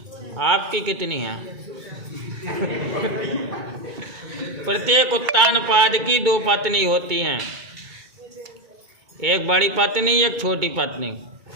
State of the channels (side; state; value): left; late; 2.2 ms